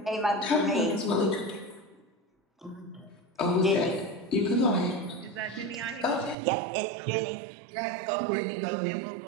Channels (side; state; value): left; drops out; at 6.4 s